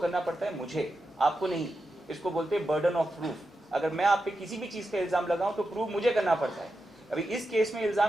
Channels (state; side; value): normal; both; correlation 0.89